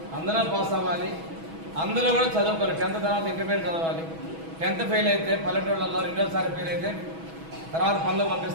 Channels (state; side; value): late; left; 6.2 ms